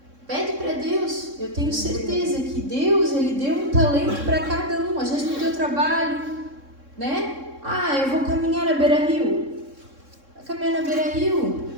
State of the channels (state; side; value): late; left; 3.6 ms